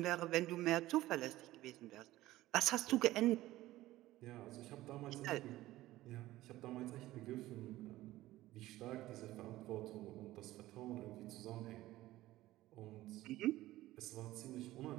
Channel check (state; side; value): quieter; left; 16.3 dB